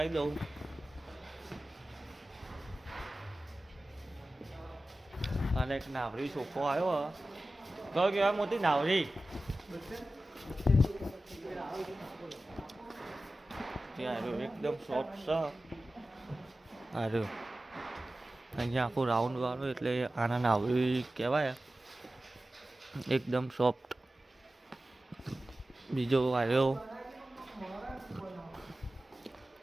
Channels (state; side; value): normal; both; correlation 0.95